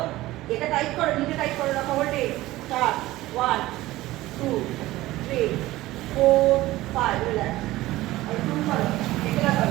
এটা টাইট করো নিচে টাইট করে রাখো হোল্ডে স্টার্ট 1 2 3 4 5 রিল্যাক্স আর 2 করো একলা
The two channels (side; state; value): left; quieter; 17.2 dB